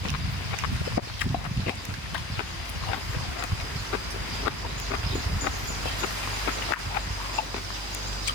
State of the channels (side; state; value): left; late; 1.1 ms